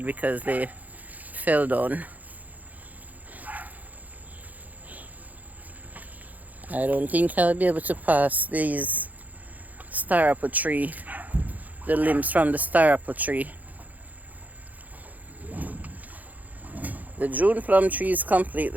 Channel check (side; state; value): left; late; 0.080 ms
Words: because they fell down. I don't think I'll be able to pass these star apple tree, the limbs from the star apple tree. The June plum tree is